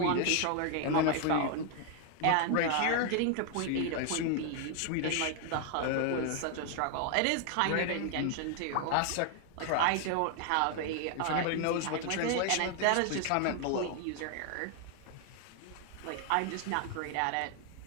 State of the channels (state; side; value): different; both; correlation 0.00